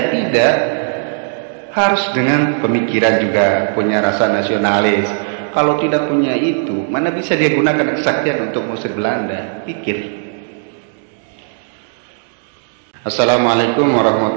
Tidak. Harus dengan pemikiran juga, punya rasa nasionalis. Kalau tidak punya itu, mana bisa dia gunakan kesaktian untuk mengusir Belanda? Pikir. Assalamualaikum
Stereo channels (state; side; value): silent; left; digital silence